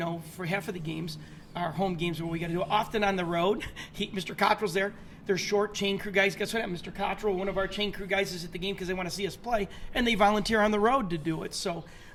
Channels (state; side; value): identical; both; correlation 1.00